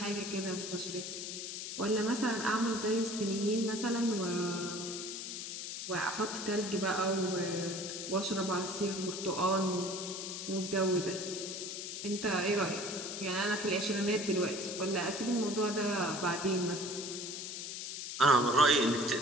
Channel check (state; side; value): noise; left; hiss, 6 dB below the sound